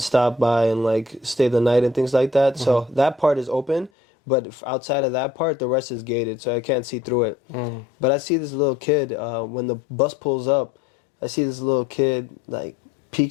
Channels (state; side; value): drops out; right; at 3.9 s